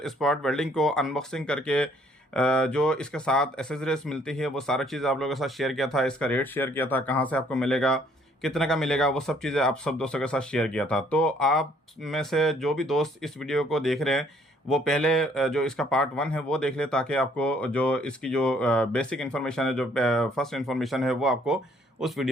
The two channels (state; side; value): normal; both; correlation 0.63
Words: स्पॉट वेल्डिंग को अनबॉक्सिंग करके जो इसके साथ एसेसरीज मिलती है वो सारी चीज़ आप लोगों के साथ शेयर किया था। इसका रेट शेयर किया था, कहां से आपको मिलेगा, कितने का मिलेगा, वो सब चीज़ें आप सब दोस्तों के साथ शेयर किया था। तो आप में से जो भी दोस्त इस वीडियो को देख रहे हैं वो पहले जो इसका पार्ट 1 है वो देख ले, ताकि आपको जो इसकी जो बेसिक इन्फॉर्मेशन है, जो फर्स्ट इन्फॉर्मेशन है, वो आपको उस